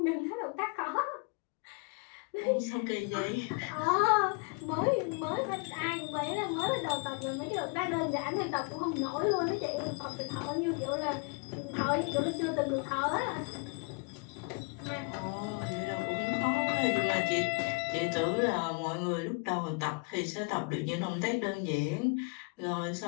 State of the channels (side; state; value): right; quieter; 33.3 dB